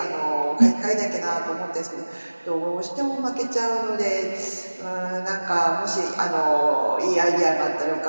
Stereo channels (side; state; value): both; inverted; correlation -1.00